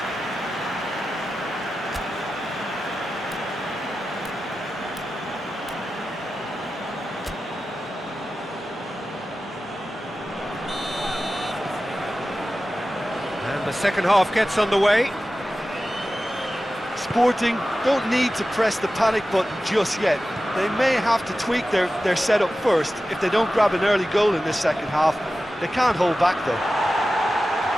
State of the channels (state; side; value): normal; both; correlation 0.94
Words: The second half gets underway. Sporting don't need to press the panic button just yet. They may have to tweak their setup first. If they don't grab an early goal in this second half, they can't hold back though.